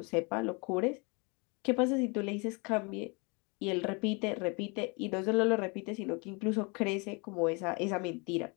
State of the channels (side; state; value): right; quieter; 31.0 dB